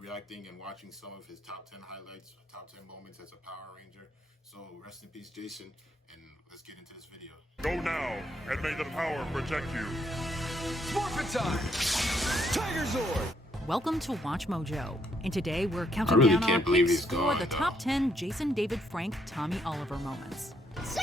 and watching some of his top 10 highlights, top 10 moments as a Power Ranger. So rest in peace Jason, and let's get into this video. Go now, and may the power protect you. Morphin' time! Tiger Zord! Welcome to Watch Mojo, and today we're counting really down our can't believe picks he's for gone, the though. top 10 Jason David Frank Tommy Oliver moments.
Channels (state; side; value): normal; both; correlation 0.73